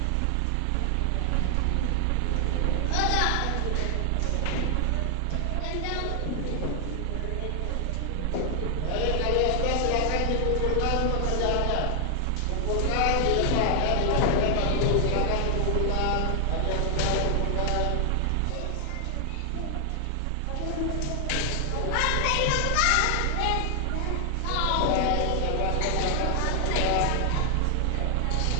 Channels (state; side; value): different; both; correlation 0.00